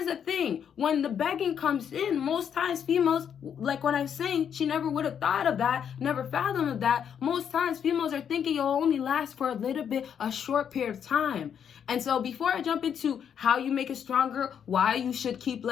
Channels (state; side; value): quieter; right; 8.2 dB